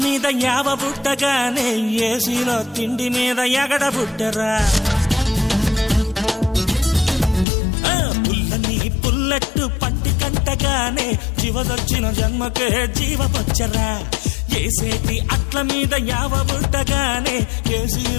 మీద యావ బుట్టగానే ఏసీలో తిండి మీద ఎగడ బుట్టరా పుల్లని పుల్లట్టు పంటి కంటగానే జీవదొచ్చిన జన్మకే జీవమొచ్చరా ఏసేటి అట్ల మీద యావ బుట్టగానే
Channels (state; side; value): drops out; right; at 7.5 s